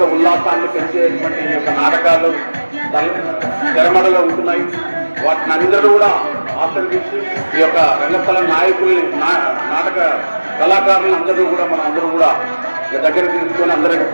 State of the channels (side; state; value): both; inverted; correlation -1.00